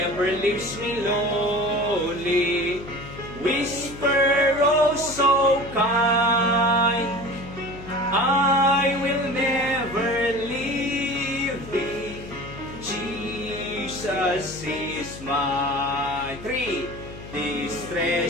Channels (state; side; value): noise; left; hum, 14 dB below the sound